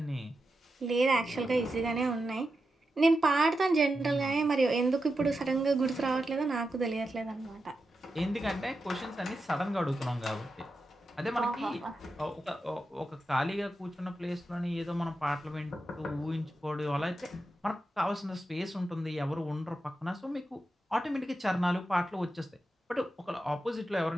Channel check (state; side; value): normal; both; correlation 0.89